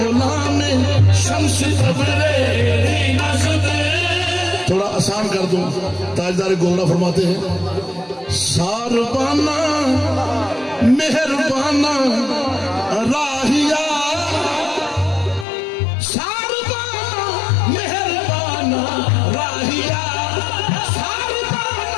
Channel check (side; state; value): right; drops out; at 15.5 s